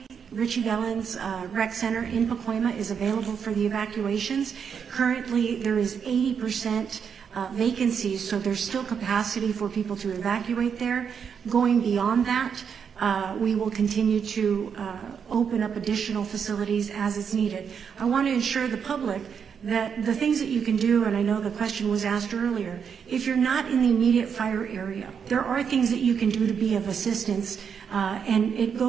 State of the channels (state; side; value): quieter; left; 6.9 dB